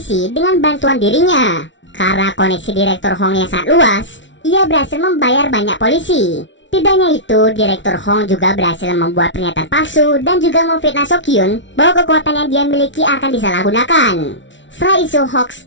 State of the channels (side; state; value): right; late; 0.55 ms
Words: dengan bantuan dirinya. Karena koneksi Direktur Hong yang sangat luas, ia berhasil membayar banyak polisi. Tidak hanya itu, Direktur Hong juga berhasil membuat pernyataan palsu dan juga memfitnah Sokyun bahwa kekuatan yang dia miliki akan disalahgunakan. Setelah isu